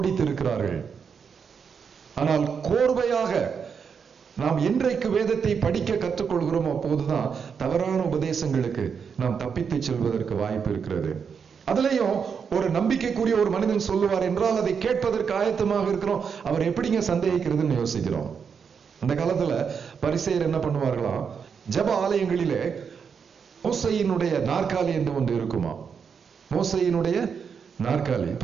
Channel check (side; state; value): left; quieter; 6.5 dB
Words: ஆனால் கோர்வையாக நாம் என்றைக்கு வேதத்தை படிக்க கற்றுக்கொள்கிறோம், அப்போதுதான் தவறான உபதேசங்களுக்கு நாம் தப்பித்து செல்வதற்கு வாய்ப்பு இருக்கிறது. அதுலயும் ஒரு நம்பிக்கைக்குரிய ஒரு மனிதன் சொல்லுவார் என்றால் அதை கேட்பதற்கு ஆயத்தமாக இருக்கிறோம். அவர் எப்படிங்க சந்தேகிக்கிறதுன்னு யோசிக்கிறோம். அந்த காலத்துல பரிசேயர் என்ன பண்ணுவார்களாம், ஜெப ஆலயங்களிலே மோசையினுடைய நாற்காலி என்று ஒன்று இருக்குமா. மோசையினுடைய நாற்காலி.